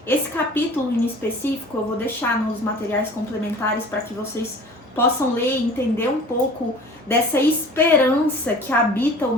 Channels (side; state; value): both; normal; correlation 0.44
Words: Esse capítulo em específico eu vou deixar nos materiais complementares para que vocês possam ler e entender um pouco dessa esperança que habita o